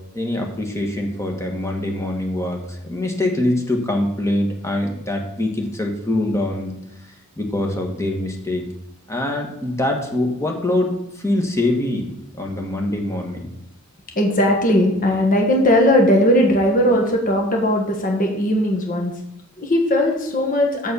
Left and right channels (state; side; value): normal; both; correlation 0.55